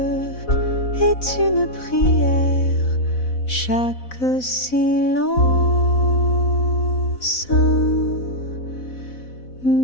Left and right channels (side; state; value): right; late; 4.0 ms